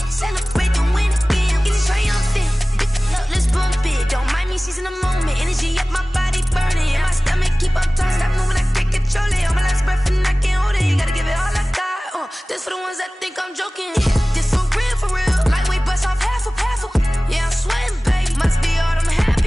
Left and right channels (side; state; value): both; normal; correlation 0.98